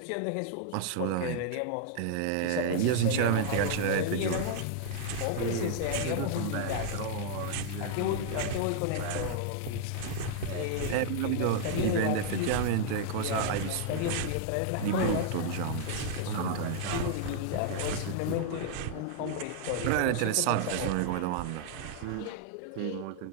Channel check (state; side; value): different; both; correlation -0.01